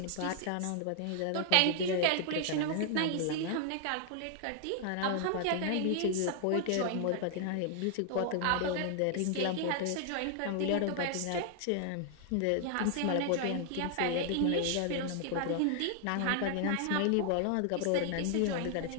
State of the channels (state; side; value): different; both; correlation 0.00